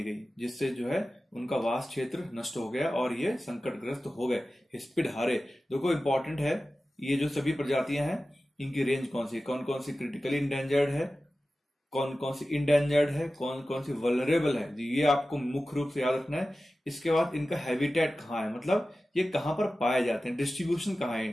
गई, जिससे जो है उनका वास क्षेत्र नष्ट हो गया और ये संकटग्रस्त हो गए। हिस्पिड हारे, देखो इंपॉर्टेंट है, ये जो सभी प्रजातियां हैं इनकी रेंज कौन सी, कौन कौन सी क्रिटिकली इंडेंजर्ड है, कौन कौन सी इंडेंजर्ड है, कौन कौन सी वल्नरेबल है, ये आपको मुख्य रूप से याद रखना है। इसके बाद इनका हैबिटेट कहाँ है, मतलब ये कहां पर पाए जाते हैं, डिस्ट्रीब्यूशन कहाँ है,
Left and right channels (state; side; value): normal; both; correlation 0.95